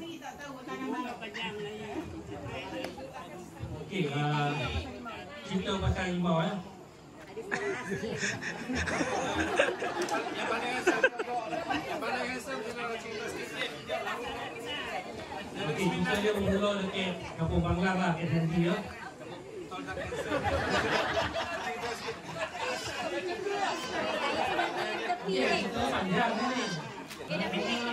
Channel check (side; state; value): both; identical; correlation 1.00